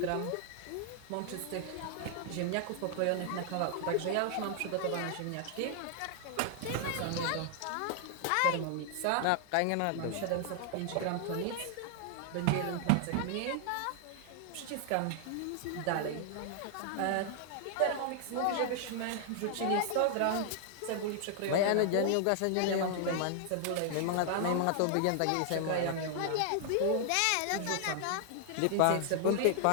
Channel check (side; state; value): both; different; correlation 0.00